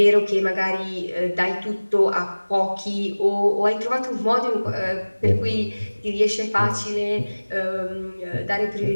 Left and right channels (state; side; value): inverted; both; correlation -1.00